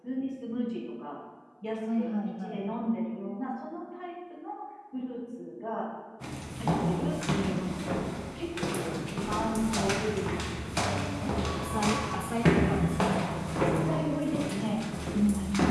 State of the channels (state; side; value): identical; both; correlation 1.00